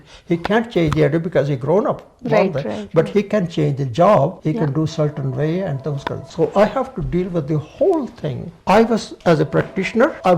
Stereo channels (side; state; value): both; identical; correlation 1.00